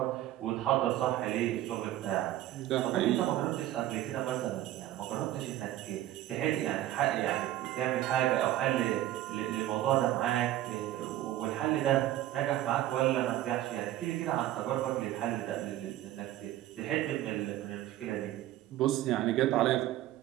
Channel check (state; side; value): quieter; left; 14.0 dB